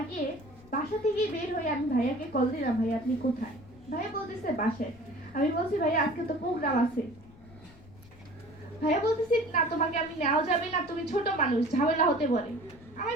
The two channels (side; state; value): left; noise; rumble, 22 dB below the sound